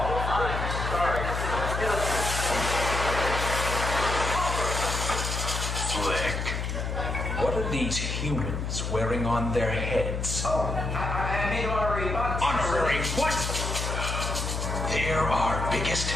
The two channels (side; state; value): left; noise; hum, 3 dB below the sound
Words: What are these humans wearing on their heads? Oh, I made honorary bugs. Honorary what? They're our biggest